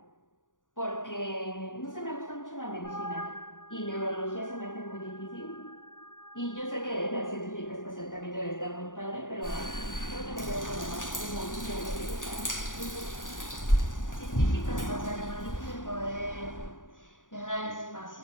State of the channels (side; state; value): right; late; 0.88 ms